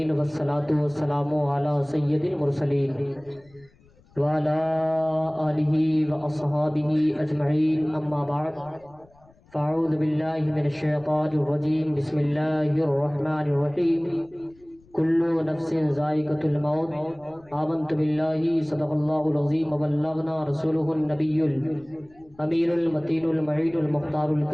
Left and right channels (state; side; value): noise; left; rumble, 29 dB below the sound